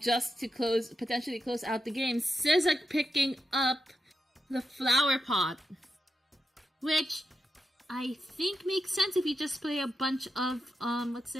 to potentially close out the game. Sizak picking up the flower pot, which I think makes sense if you just play a bunch of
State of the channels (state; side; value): normal; both; correlation 0.87